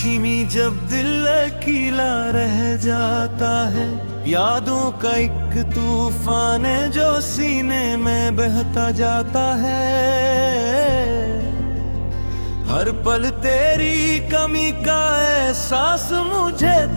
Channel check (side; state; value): both; inverted; correlation -1.00